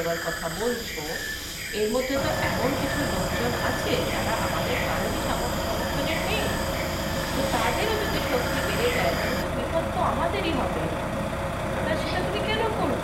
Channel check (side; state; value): both; identical; correlation 1.00